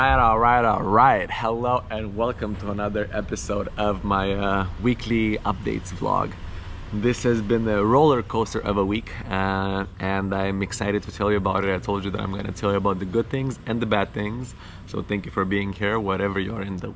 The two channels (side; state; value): both; identical; correlation 1.00